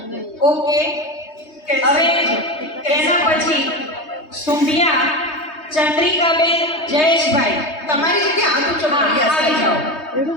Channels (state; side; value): late; right; 3.2 ms